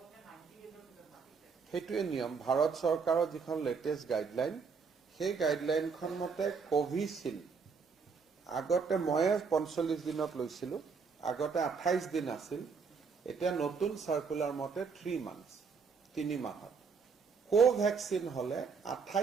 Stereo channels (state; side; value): quieter; left; 5.4 dB